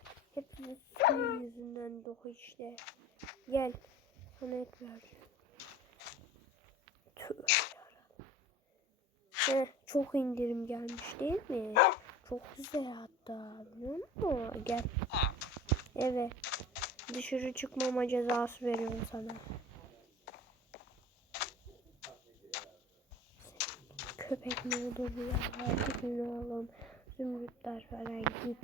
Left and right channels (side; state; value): both; normal; correlation 0.41